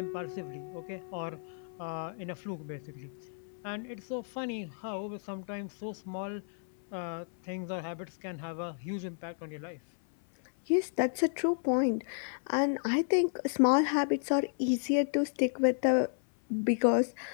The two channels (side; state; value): right; silent; 56 dB below the other